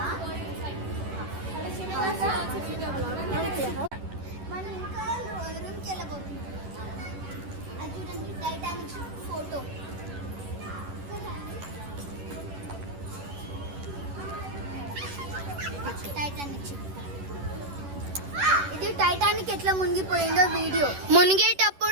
మనం ఇంకా రూమ్కి వెళ్ళబోతున్నాం. అది చూడండి, టైటానిక్ ఫోటో. Titanic ship. ఇది టైటానిక్ ఎట్లా మునిగిపోయిందో వీడియో.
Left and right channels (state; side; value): late; left; 11 ms